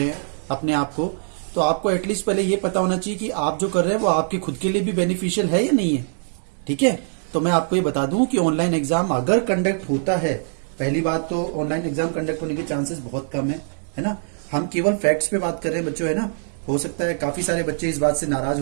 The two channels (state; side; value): silent; left; digital silence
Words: हैं अपने आप को, तो आपको एटलीस्ट पहले ये पता होना चाहिए कि आप जो कर रहे हैं वो आपके खुद के लिए भी बेनिफिशियल है या नहीं है। ठीक है, तो मैं आपको ये बता दूं कि ऑनलाइन एग्जाम अगर कंडक्ट होता है, पहली बात तो ऑनलाइन एग्जाम कंडक्ट होने के चांसेस बहुत कम है ना। हम केवल फैक्ट्स पे बात कर रहे हैं बच्चों, है ना। हो सकता है काफी सारे बच्चे इस बात से नाराज